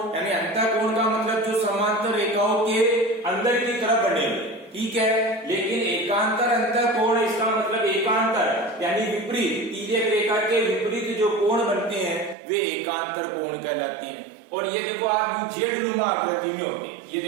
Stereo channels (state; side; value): drops out; left; at 12.4 s